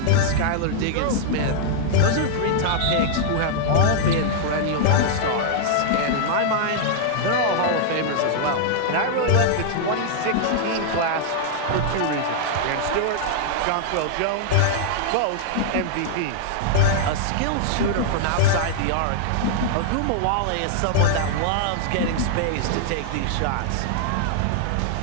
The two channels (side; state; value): both; different; correlation 0.00